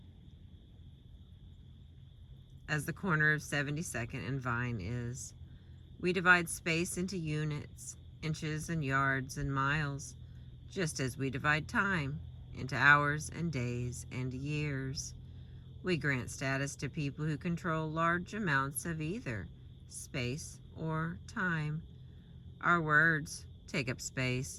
as the corner of 72nd and Vine is. We divide space into units, inches and yards and miles, just as we divide time into hours and days and years. We grant status to people who control large amounts of either space or time. Our words take up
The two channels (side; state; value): both; identical; correlation 1.00